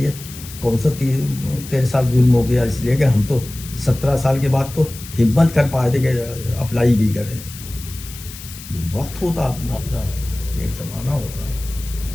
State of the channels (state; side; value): noise; left; hiss, 14 dB below the sound